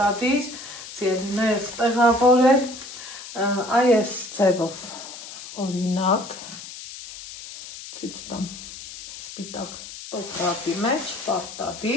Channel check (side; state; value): left; noise; hiss, 13 dB below the sound